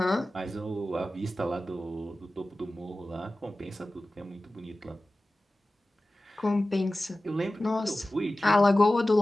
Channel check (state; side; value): normal; both; correlation 0.96